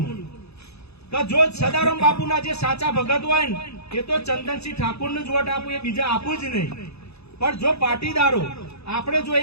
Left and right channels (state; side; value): late; right; 0.79 ms